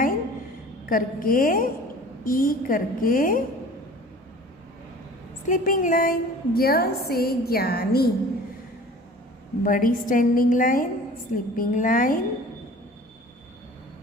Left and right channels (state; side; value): normal; both; correlation 0.44